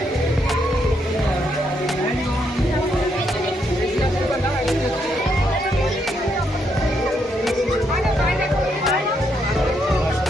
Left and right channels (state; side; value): normal; both; correlation 0.77